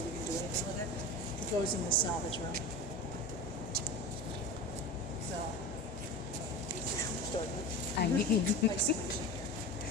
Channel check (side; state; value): both; normal; correlation 0.30